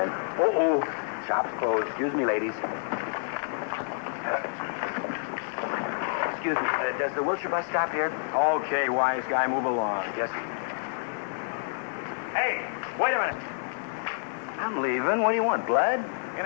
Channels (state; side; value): silent; right; digital silence